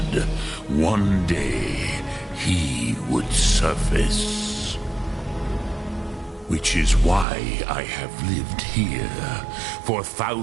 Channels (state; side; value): drops out; left; at 7.2 s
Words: One day, he would surface. Which is why I have lived here. For